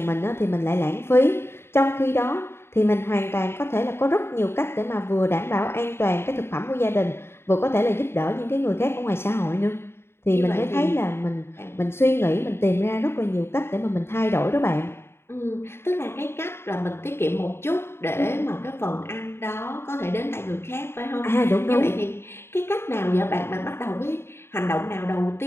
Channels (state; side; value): late; right; 0.12 ms